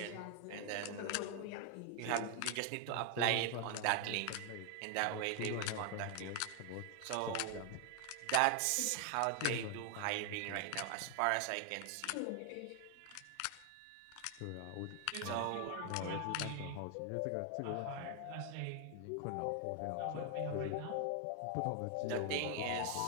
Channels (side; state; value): both; different; correlation 0.00